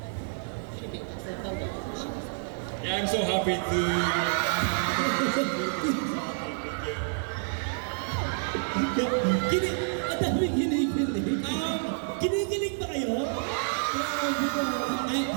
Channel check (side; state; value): left; silent; digital silence